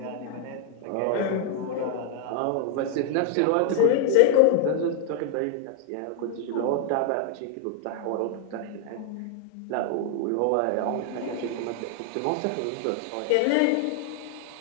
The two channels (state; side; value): different; both; correlation 0.00